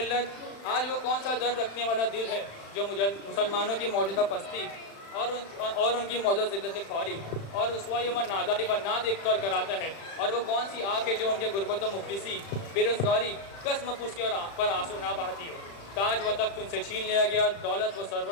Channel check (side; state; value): right; late; 35 ms